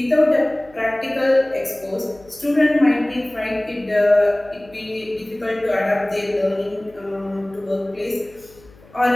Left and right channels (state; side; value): noise; left; hum, 25 dB below the sound